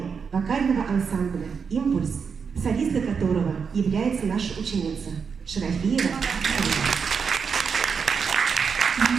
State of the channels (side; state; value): left; quieter; 6.0 dB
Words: вокального ансамбля «Импульс», солистка которого является наша ученица Шарафиева